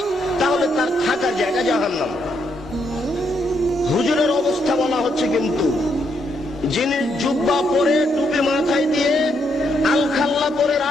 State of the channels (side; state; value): both; normal; correlation 0.76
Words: তাহলে তার থাকার জায়গা জাহান্নাম। হুজুরের অবস্থা বলা হচ্ছে, কিন্তু যিনি জুব্বা পরে টুপি মাথায় দিয়ে আলখাল্লা পরে